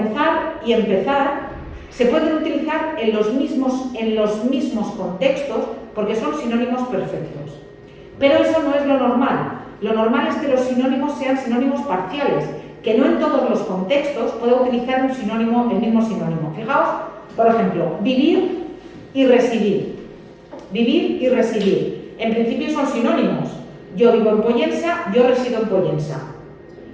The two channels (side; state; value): both; identical; correlation 1.00